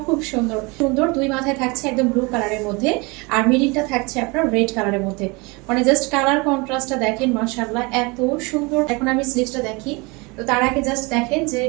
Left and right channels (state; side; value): quieter; left; 27.1 dB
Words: খুব সুন্দর সুন্দর, দুই মাথায় থাকছে একদম ব্লু কালারের মধ্যে, আর মিডিলটা থাকছে আপনার রেড কালারের মধ্যে। মানে জাস্ট কালার কন্ট্রাস্টটা দেখেন মাশাআল্লাহ এত সুন্দর। এখন আমি স্লিভসটা দেখি। তো তার আগে জাস্ট দেখেন যে